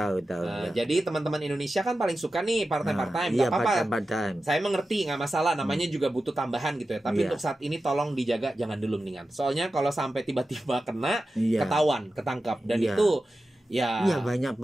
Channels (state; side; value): normal; both; correlation 0.93